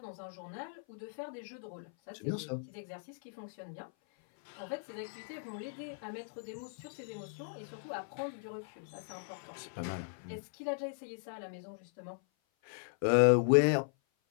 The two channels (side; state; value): right; silent; 53 dB below the other